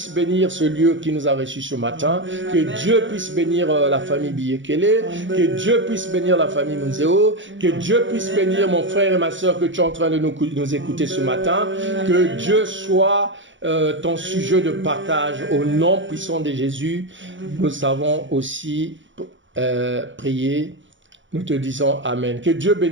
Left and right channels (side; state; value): left; late; 0.55 ms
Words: bénir ce lieu qui nous a reçus ce matin, que Dieu puisse bénir la famille Biyekele, que Dieu puisse bénir la famille Munzeo, que Dieu puisse bénir mon frère et ma soeur que tu es en train de nous écouter ce matin, que Dieu soit ton sujet de partage au nom puissant de Jésus. Nous avons aussi prié, nous te disons Amen. Que Dieu